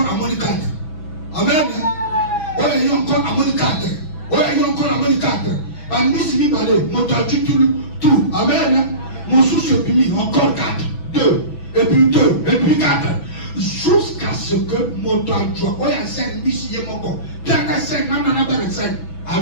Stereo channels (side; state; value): right; late; 6.1 ms